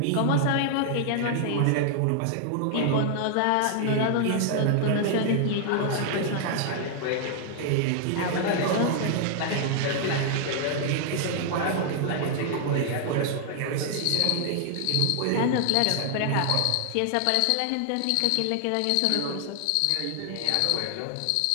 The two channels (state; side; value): different; both; correlation 0.00